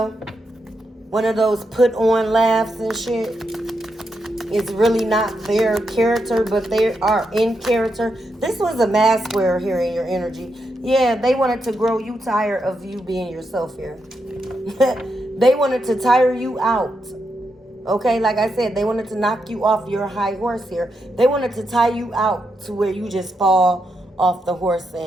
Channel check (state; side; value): normal; both; correlation 0.83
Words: One of those put on laughs and shit. It's really not their character, but they are in character. This was a mask wearer here in your energy. Yeah, they wanted to grow you tired of you being yourself here. They wanted to tire you out. Okay, like I said, they wanted to knock you off your high horse here. They wanted to tie you out to where you just fall off the horse